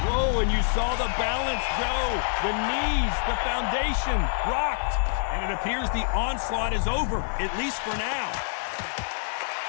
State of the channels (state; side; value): silent; right; digital silence